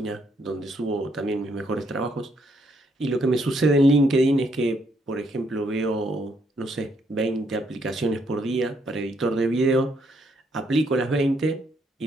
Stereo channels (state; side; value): normal; both; correlation 0.72